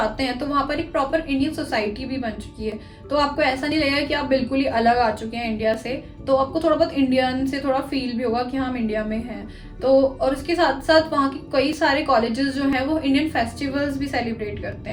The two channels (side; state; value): both; identical; correlation 1.00